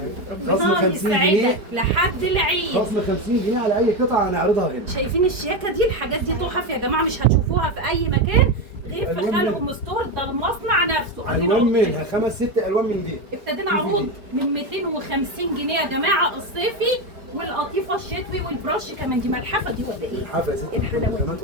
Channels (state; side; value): late; left; 4.7 ms